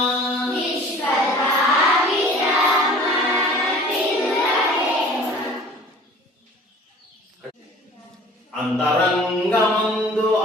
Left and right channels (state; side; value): normal; both; correlation 0.47